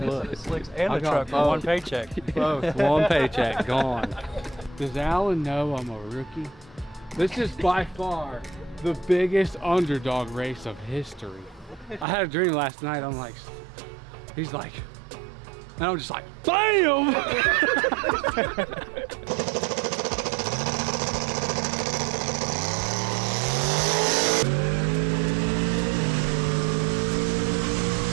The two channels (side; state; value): left; drops out; at 12.1 s